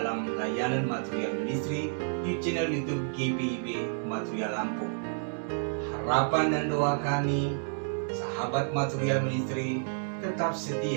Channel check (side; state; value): left; silent; digital silence